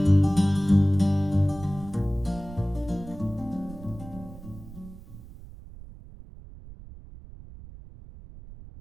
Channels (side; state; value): right; noise; rumble, 16 dB below the sound